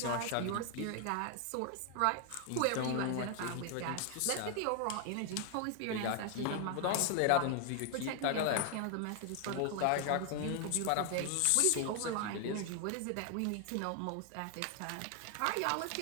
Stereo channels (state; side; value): different; both; correlation 0.00